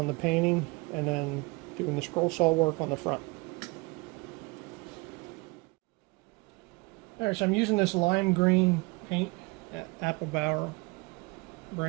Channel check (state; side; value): quieter; left; 25.7 dB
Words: the painting and then doing the scroll saw work on the front. Alright, so I'm using this lime green paint at Applebauer